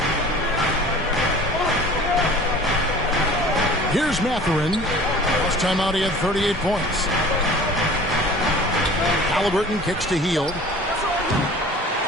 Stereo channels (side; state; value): both; normal; correlation 0.44